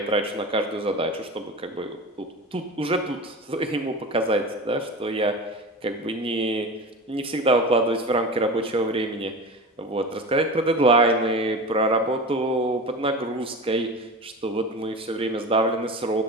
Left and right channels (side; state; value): both; normal; correlation 0.30